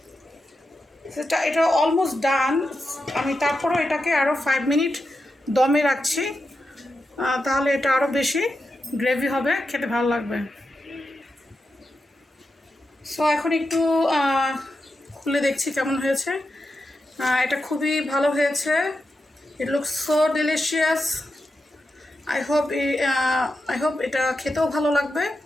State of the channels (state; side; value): normal; both; correlation 0.88